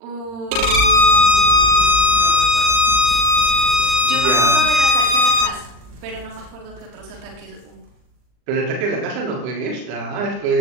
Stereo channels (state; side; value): late; left; 39 ms